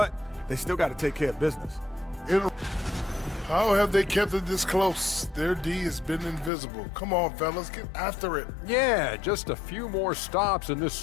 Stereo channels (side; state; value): right; drops out; at 6.5 s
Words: they still got to take care of business. How have they kept it this close? Their D has been invisible. Come on, fellas, get after it. Yeah, just a few more stops and this